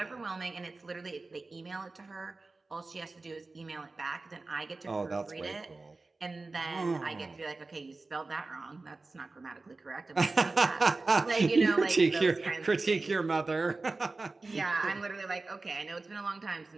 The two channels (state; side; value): quieter; left; 3.5 dB